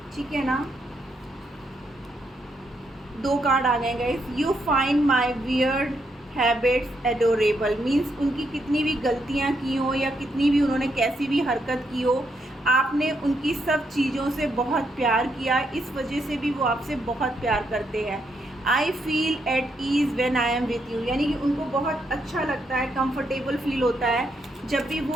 ठीक है ना। 2 कार्ड आ गए guys. You find my weird habits adorable, means उनकी कितनी भी गलतियाँ की हो या कितनी भी उन्होंने कैसी भी हरकत की हो, आपने उनकी सब चीज़ों से बहुत प्यार किया, इस वजह से भी वो आपसे बहुत प्यार करते हैं। I feel at ease when I am with you, यानी कि उनको बहुत अच्छा लगता है, कंफर्टेबल फील होता है जब भी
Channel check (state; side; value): normal; both; correlation 0.78